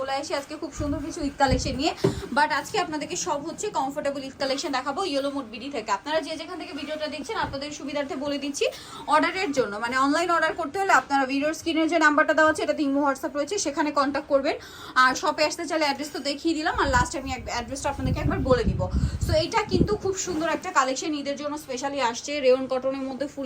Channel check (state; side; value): identical; both; correlation 1.00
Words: আসি আজকে খুব সুন্দর কিছু ঈদ কালেকশন নিয়ে। বাট আজকে আপনাদেরকে সব হচ্ছে কমফোর্টেবল ঈদ কালেকশন দেখাবো ইয়েলো মুড বিডি থেকে। আপনারা যে যেখান থেকে ভিডিওটা দেখছেন আপনাদের সুবিধার্থে বলে দিচ্ছি, অর্ডারের জন্য মানে অনলাইন অর্ডার করতে হলে আপনারা ভিডিওর স্ক্রিনের যে নাম্বারটা দেওয়া আছে এটাতে ইমো হোয়াটসঅ্যাপ রয়েছে, সেখানে কন্ট্যাক্ট করবেন। আর শপে আসতে চাইলে অ্যাড্রেস তো দেখিয়ে দিলাম, আর লাস্ট আমি অ্যাড্রেসটা আপনাদেরকে একবার বলে দিব। সো এইটা কিন্তু খুব সুন্দর একটা কালেকশন, ঈদের জন্য স্পেশালি আসছে। রেয়ন কটনের মধ্যে